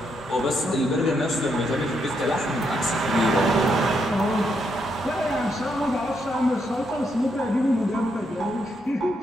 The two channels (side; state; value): both; normal; correlation 0.78